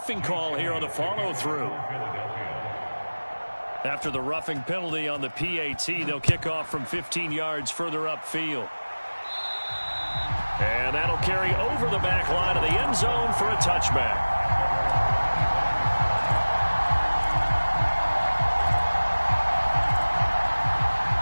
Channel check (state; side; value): inverted; both; correlation -1.00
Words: call here on the follow-through. After the roughing penalty on the PAT, they'll kick off from 15 yards further upfield. And that'll carry over the back line of the end zone for a touchback.